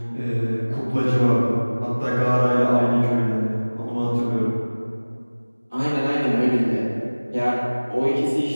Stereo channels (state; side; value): inverted; both; correlation -1.00